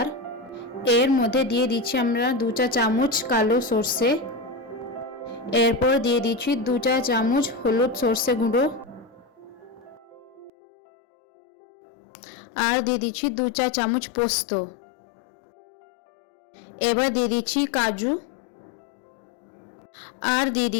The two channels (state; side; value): drops out; right; at 10.5 s